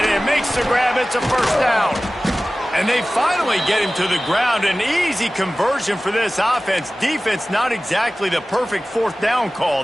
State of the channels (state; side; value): normal; both; correlation 0.97